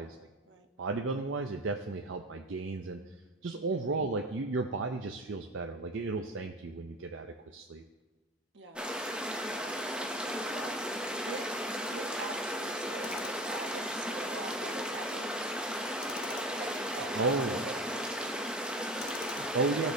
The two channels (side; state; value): both; normal; correlation 0.33